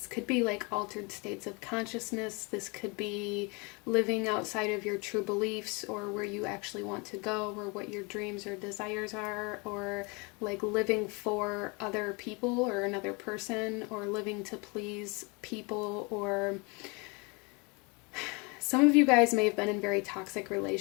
could be like altered states of consciousness. This could be living outside of your true beliefs, or where you actually want to go, or what your dreams or desires are, or like living for other people or another person, or living to please people. Or some of you guys may have been in very toxic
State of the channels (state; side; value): quieter; right; 29.6 dB